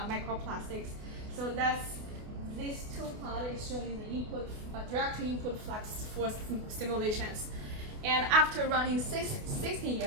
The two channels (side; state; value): left; late; 28 ms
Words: So that's these two plots is showing the input direct input flux for simulations, and after running 60